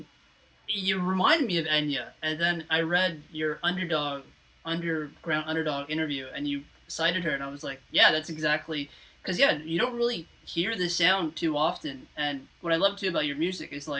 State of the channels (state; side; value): identical; both; correlation 1.00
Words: you reminded me of Enya. And then I read your underground underdog interview, and you cited her, and I was like, yeah, that's exactly, because you don't really hear this sound too often. And what I love too about your music is